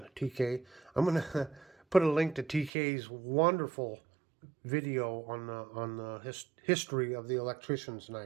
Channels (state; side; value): drops out; left; at 2.7 s